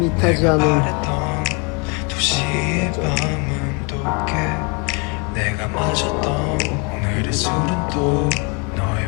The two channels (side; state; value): right; quieter; 32.7 dB